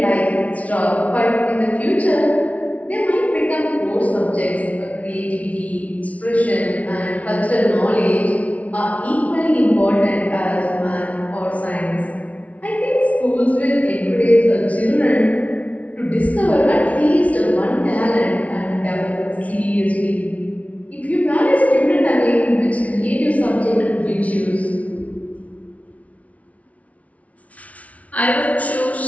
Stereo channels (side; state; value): right; late; 0.067 ms